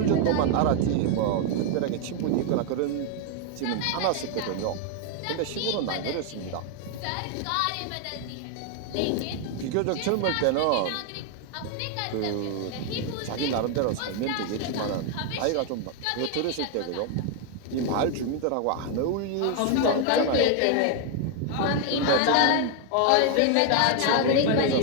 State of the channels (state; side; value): different; both; correlation 0.00